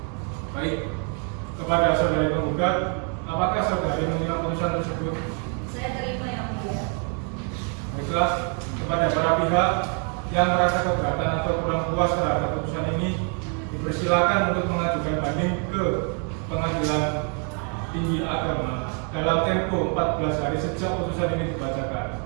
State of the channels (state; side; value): quieter; left; 39.9 dB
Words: Baik, kepada saudari penggugat, apakah saudari menerima putusan tersebut? Saya terima Yang Mulia. Baiklah, kepada para pihak yang merasa keberatan atau kurang puas terhadap putusan ini, dipersilakan untuk mengajukan banding ke Pengadilan Tinggi Agama dalam tempo 14 hari sejak putusan ini dibacakan.